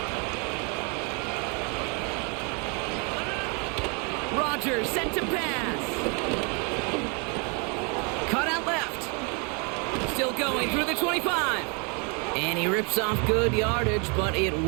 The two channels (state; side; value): quieter; left; 35.0 dB